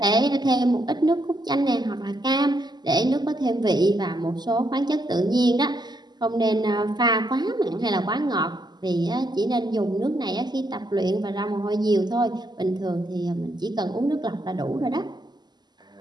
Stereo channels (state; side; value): late; left; 0.21 ms